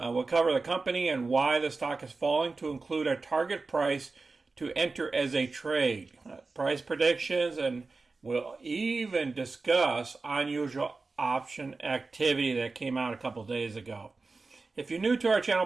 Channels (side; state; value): left; quieter; 3.9 dB